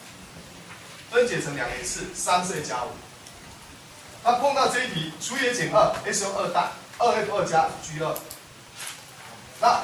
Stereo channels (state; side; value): identical; both; correlation 1.00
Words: 分解成两个次，3是 a 加5。那碰到这一题，除以 a 减2 ，s 用2代，2f2 加 g2，那